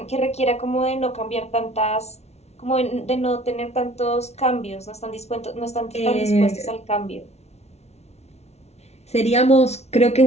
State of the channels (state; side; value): late; right; 0.31 ms